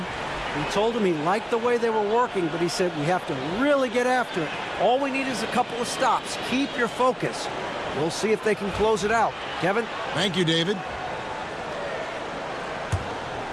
He told him he liked the way they were working, but he said we have to really get after it. All we need is a couple of stops. Keep your focus. We'll see if they can close it out. Kevin? Thank you, David.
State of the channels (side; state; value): both; identical; correlation 1.00